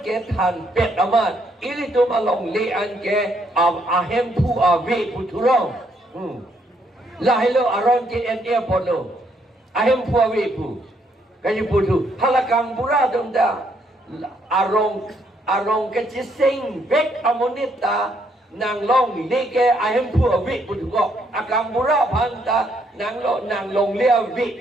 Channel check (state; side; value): normal; both; correlation 0.72